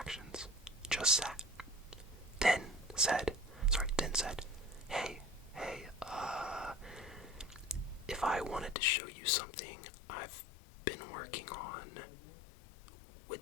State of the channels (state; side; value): drops out; right; at 8.8 s